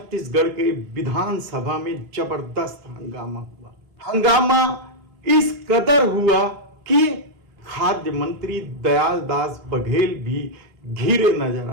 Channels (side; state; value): left; late; 3.1 ms